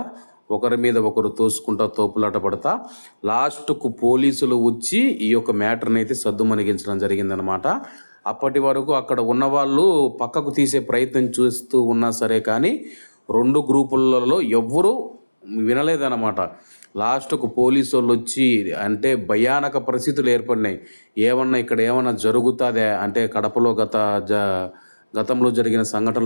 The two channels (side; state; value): both; inverted; correlation -1.00